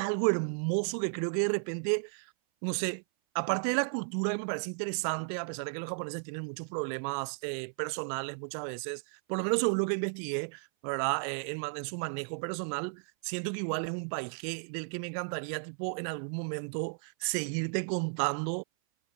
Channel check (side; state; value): left; silent; 55 dB below the other